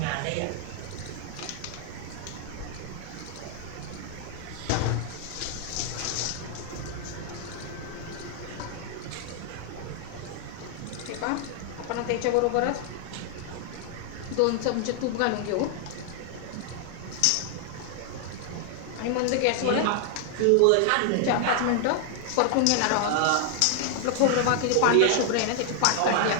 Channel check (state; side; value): different; both; correlation 0.00